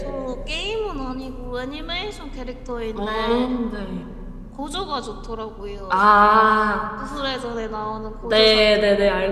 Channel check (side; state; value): both; identical; correlation 1.00